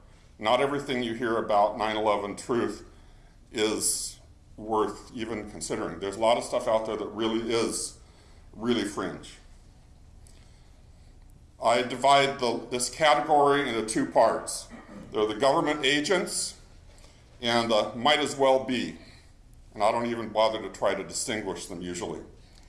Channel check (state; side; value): identical; both; correlation 1.00